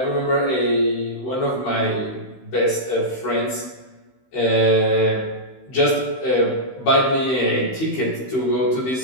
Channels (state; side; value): late; right; 16 ms